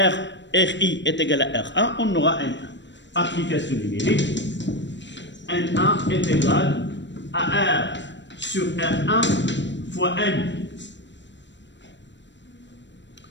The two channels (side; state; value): right; late; 0.53 ms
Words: Ri est égal à R1, on aura N1. Application numérique, N1 est égal à R sur R1 fois N.